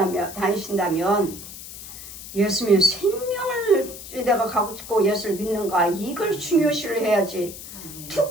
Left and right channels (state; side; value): noise; left; hiss, 13 dB below the sound